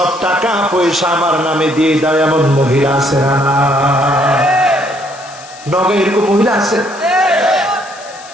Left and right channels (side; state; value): left; noise; hiss, 19 dB below the sound